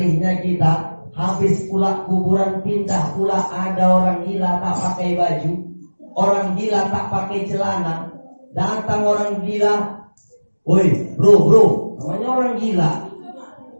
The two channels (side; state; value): both; inverted; correlation -1.00